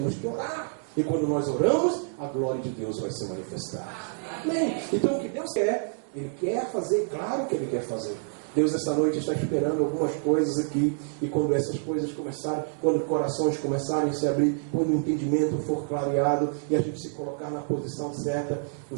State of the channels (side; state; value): left; silent; digital silence